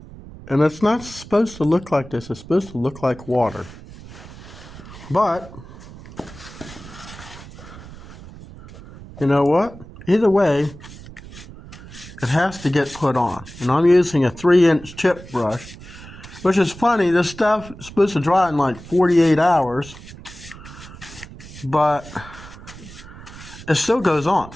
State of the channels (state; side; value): noise; right; rumble, 17 dB below the sound